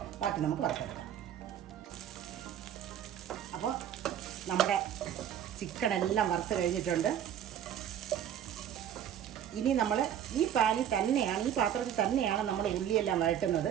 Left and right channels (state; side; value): quieter; left; 9.9 dB